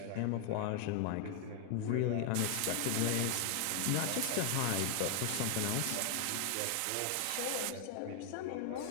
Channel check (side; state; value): both; different; correlation 0.00